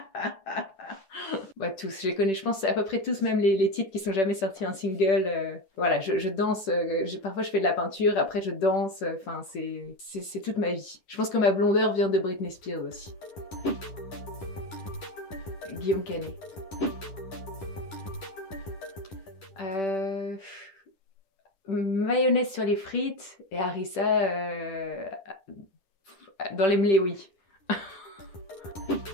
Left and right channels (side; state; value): right; late; 10 ms